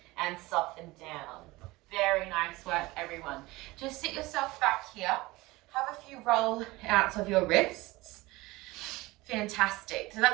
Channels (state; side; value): quieter; left; 20.7 dB